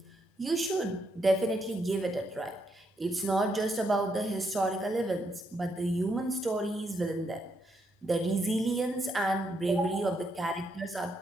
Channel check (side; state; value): both; normal; correlation 0.78